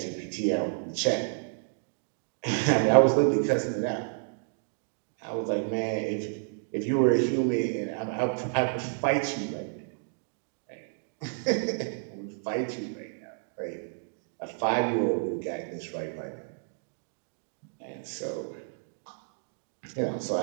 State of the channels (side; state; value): left; silent; digital silence